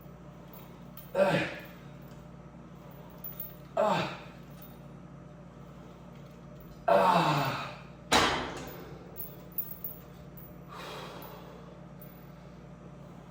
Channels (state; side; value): identical; both; correlation 1.00